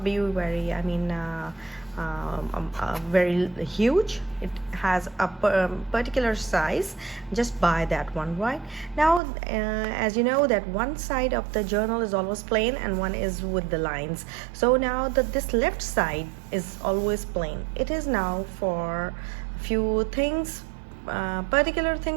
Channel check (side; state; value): left; drops out; at 9.2 s